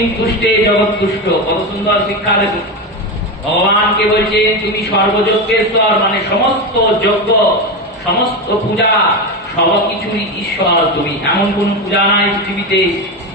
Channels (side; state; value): both; normal; correlation 0.16